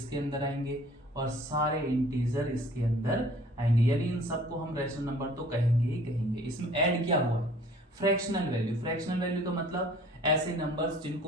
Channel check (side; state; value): both; normal; correlation 0.52